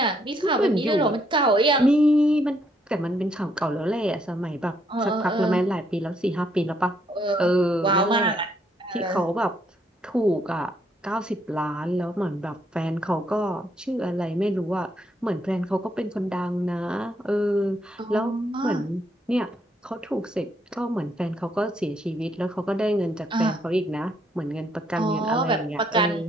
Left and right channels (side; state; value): both; normal; correlation 0.72